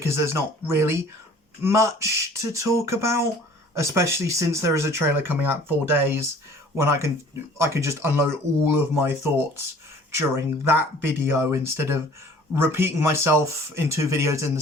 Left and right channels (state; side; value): normal; both; correlation 0.51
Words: there's not really much to talk about, especially since there is a trailer coming out in 4 days when I can just unload all of my thoughts during that video instead of repeating myself in 2 videos in the